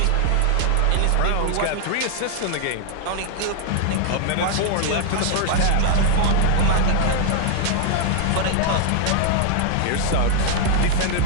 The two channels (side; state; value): both; different; correlation 0.00